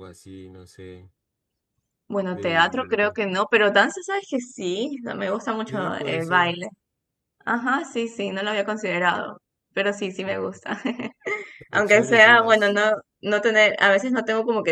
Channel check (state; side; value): identical; both; correlation 1.00